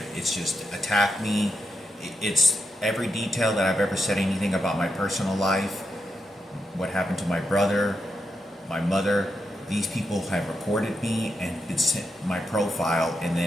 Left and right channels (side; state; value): both; normal; correlation 0.84